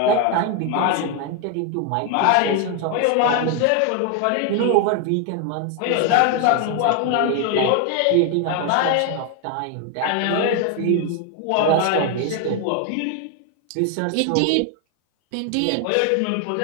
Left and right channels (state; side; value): different; both; correlation 0.01